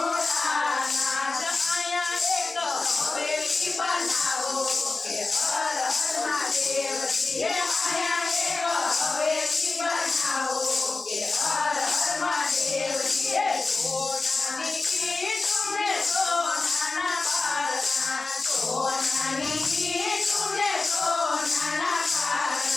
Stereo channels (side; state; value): right; quieter; 3.7 dB